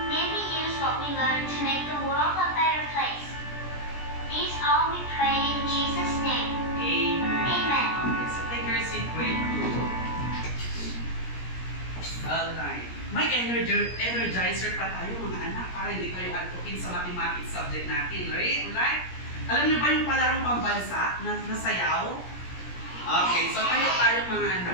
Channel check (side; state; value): right; late; 17 ms